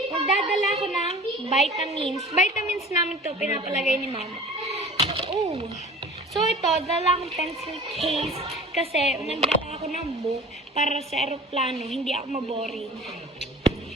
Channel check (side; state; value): both; normal; correlation 0.41